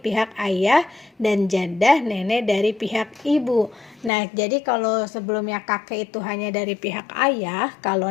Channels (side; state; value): right; drops out; at 4.1 s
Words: ayah, dan jadah nenek dari pihak ibu. Nah, jadi kalau sebelumnya kakek itu hanya dari pihak ayah, kalau